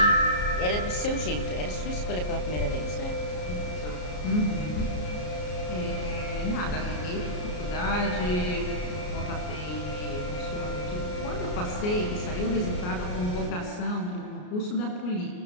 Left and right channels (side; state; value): right; late; 33 ms